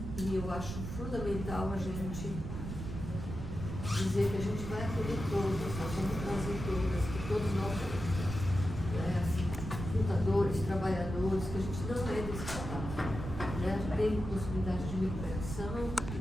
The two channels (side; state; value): right; noise; rumble, 6 dB below the sound